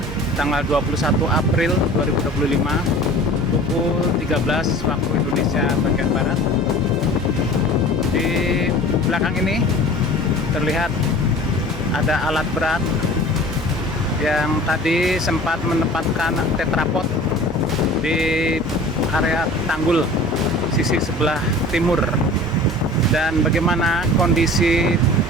tanggal 21 April 2025 pukul 13 waktu Indonesia bagian Barat. Di belakang ini terlihat ada alat berat yang tadi sempat menempatkan tetrapod di area tanggul sisi sebelah timur. Dan bagaimana kondisi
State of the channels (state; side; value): normal; both; correlation 0.42